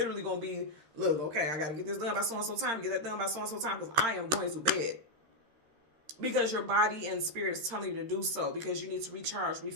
going to be, look, okay, I got to get this done by so-and-so time, get that done by so-and-so time, because I am going to bed. Because your body and spirit is telling you to do so, because you need to recharge,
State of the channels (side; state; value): left; late; 13 ms